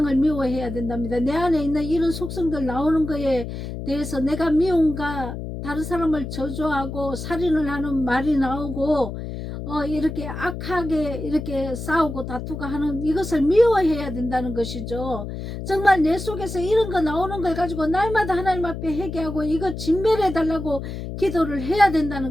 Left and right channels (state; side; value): noise; left; hum, 7 dB below the sound